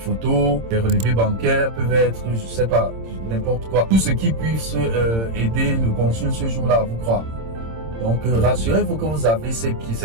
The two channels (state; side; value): late; left; 26 ms